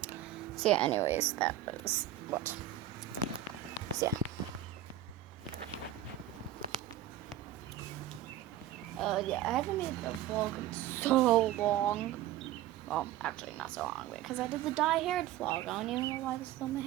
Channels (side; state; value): left; quieter; 12.3 dB